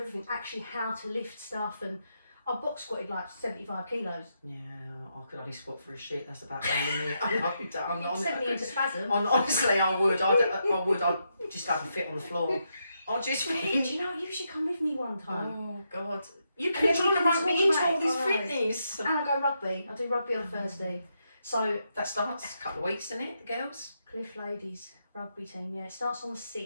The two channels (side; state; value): both; inverted; correlation -0.81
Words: actually how to lift stuff, and I box squatted like 75 kilos. Yeah, I could only squat for a shit. That's about the limit. I'm not. It sent me into spasm. Honestly, I would. I'd just have a fit on the floor. I'd just Do think. you know, you should come with me one time. Oh God, you And keep then trying we to can rope me talk into about all it, this alright. fitness. And I go rugby. I do rugby on Thursday. So That starts a couple of weeks, isn't it, the girls? Cliff Ladies rugby team, it starts on the